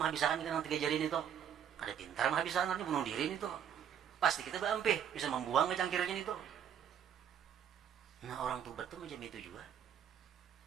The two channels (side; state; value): left; quieter; 8.8 dB